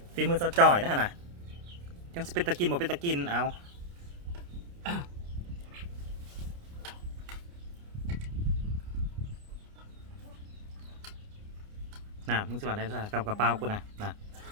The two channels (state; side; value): late; left; 29 ms